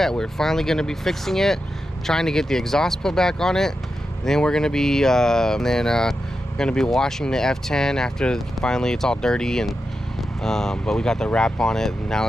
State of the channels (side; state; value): both; normal; correlation 0.89